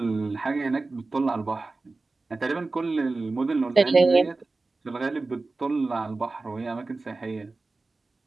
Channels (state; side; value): quieter; left; 3.5 dB